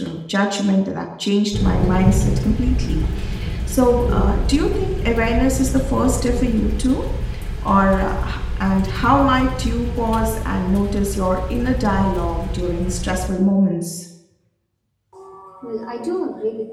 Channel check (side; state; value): both; identical; correlation 1.00